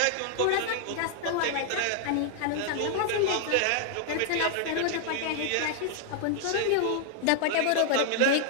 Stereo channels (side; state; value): both; different; correlation 0.00